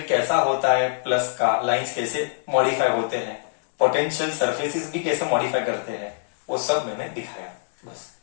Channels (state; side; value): silent; right; digital silence